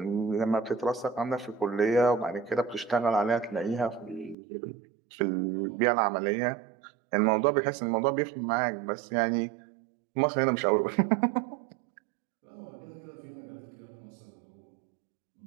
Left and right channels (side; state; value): left; drops out; at 4.4 s